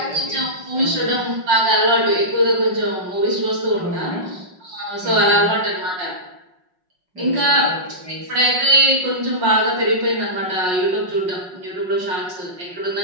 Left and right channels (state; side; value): late; left; 5.5 ms